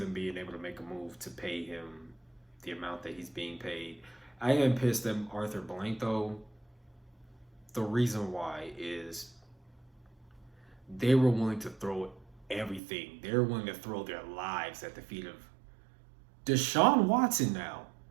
being able to make a move to pay him the amount that he's being paid. I am pissed at Arthur Blank though. The reason why is they were willing to throw everything. They're willing to throw their lives at the feet of Deshaun Watson now.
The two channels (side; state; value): left; drops out; at 12.8 s